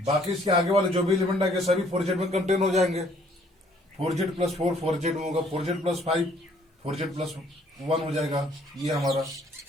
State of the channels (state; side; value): normal; both; correlation 0.62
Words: इसके आगे वाले जो भी एलिमेंट आएंगे सभी 4z में कंटेन हो जाएंगे। 4z प्लस 4 4z में होगा, 4z प्लस 5 4z प्लस 1 हो जाएगा ये हमारा।